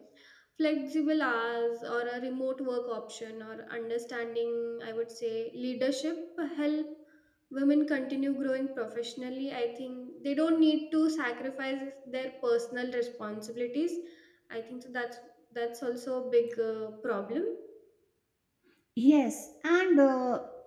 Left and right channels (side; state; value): both; identical; correlation 1.00